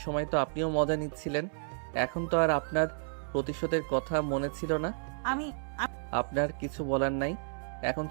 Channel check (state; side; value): silent; left; 57 dB below the other